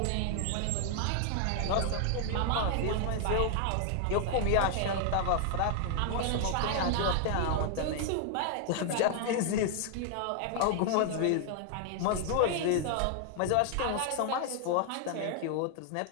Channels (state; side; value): different; both; correlation 0.00